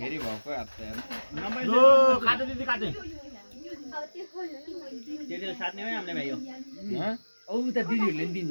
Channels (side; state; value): both; inverted; correlation -1.00